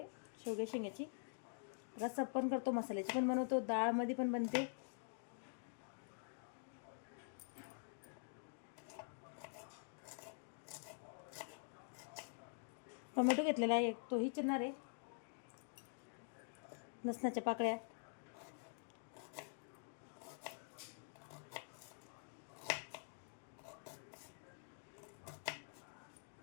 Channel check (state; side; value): silent; right; digital silence